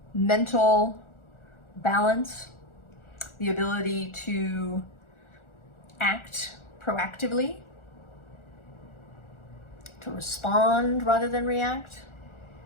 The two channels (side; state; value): right; late; 1.4 ms